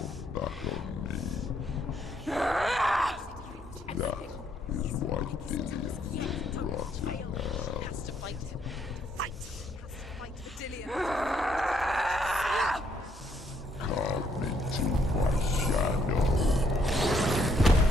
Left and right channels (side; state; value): both; normal; correlation 0.71